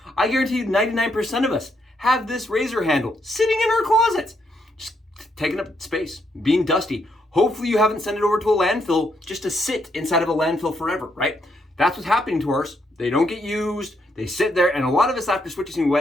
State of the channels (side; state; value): both; normal; correlation 0.76